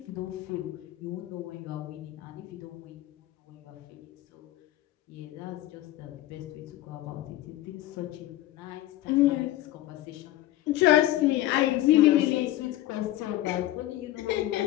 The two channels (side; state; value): right; quieter; 15.1 dB